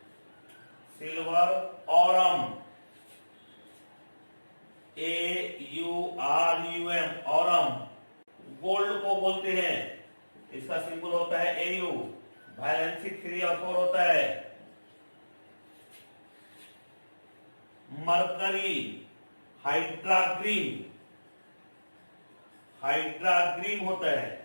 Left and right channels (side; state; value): both; inverted; correlation -1.00